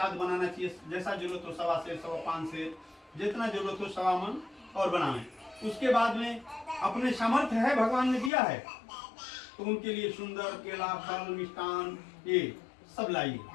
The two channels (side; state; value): right; drops out; at 8.3 s